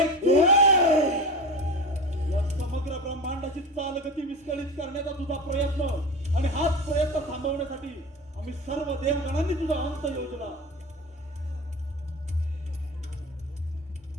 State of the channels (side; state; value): both; normal; correlation 0.29